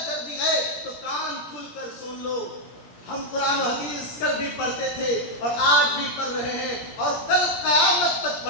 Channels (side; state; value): right; late; 17 ms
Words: گردی ہے، تو کان کھل کر سن لو۔ ہم قرآن و حدیث کل بھی پڑھتے تھے اور آج بھی پڑھ رہے ہیں اور کل قیامت تک